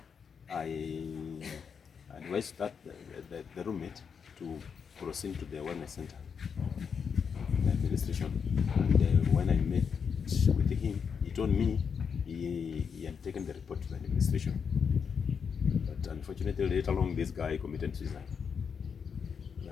I advised the roommate to proceed to the wellness center, the administration. And when I met with him, he told me he had taken the report to the administration. But unfortunately, later on, this guy committed suicide.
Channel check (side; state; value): right; quieter; 6.5 dB